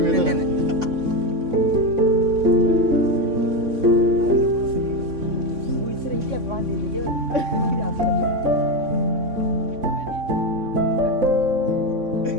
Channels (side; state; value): left; late; 3.6 ms